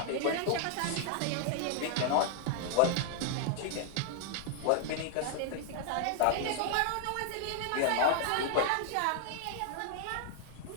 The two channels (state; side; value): different; both; correlation 0.00